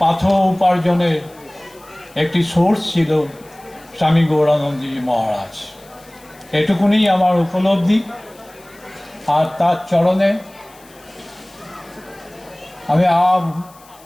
পাথেয় উপার্জনের একটি সোর্স ছিল স্বামী গৌরানন্দজি মহারাজ। এটুকুনি আমার উপলব্ধি। আর তার চরণে আমি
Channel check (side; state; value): left; noise; hiss, 26 dB below the sound